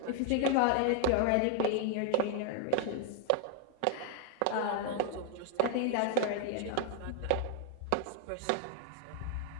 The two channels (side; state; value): both; different; correlation 0.00